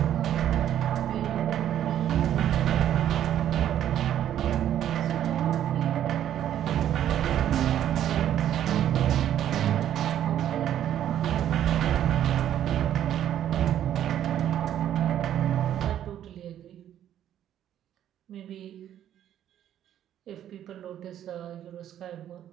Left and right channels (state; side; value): quieter; left; 10.9 dB